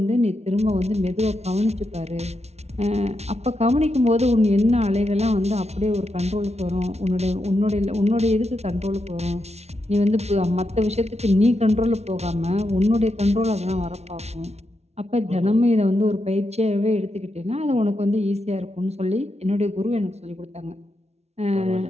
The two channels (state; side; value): late; left; 0.31 ms